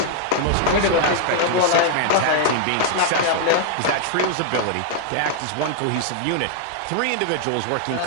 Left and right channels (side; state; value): both; different; correlation -0.01